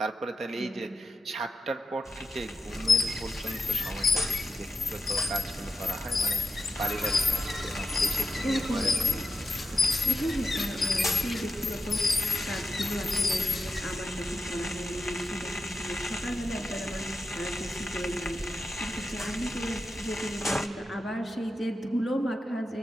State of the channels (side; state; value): both; normal; correlation 0.88